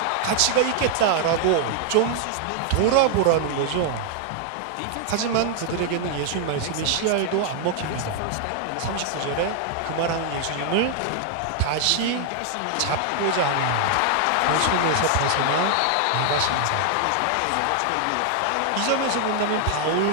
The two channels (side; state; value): both; different; correlation 0.00